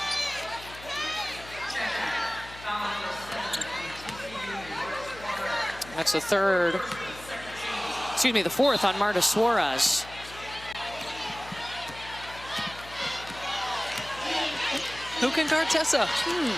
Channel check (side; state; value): left; noise; hum, 17 dB below the sound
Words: That's the fourth on Marta Suarez. Who can guard Tessa?